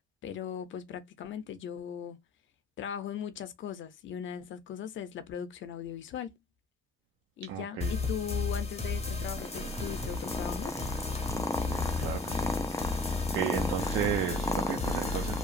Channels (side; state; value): both; normal; correlation 0.50